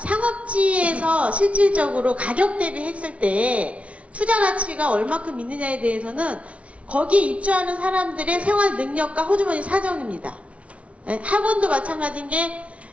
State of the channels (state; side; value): late; left; 0.063 ms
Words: 실질적으로 가격 대비했을 때 투자 가치가 얼마큼 있느냐에 대해서는 거기에 입주하는 사람들의 생활 능력과 호주머니 사정입니다. 네, 학원도 마찬가지인 게